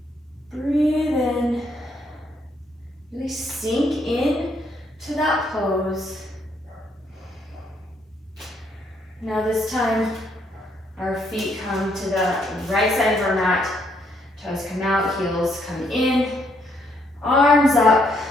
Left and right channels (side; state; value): both; normal; correlation 0.72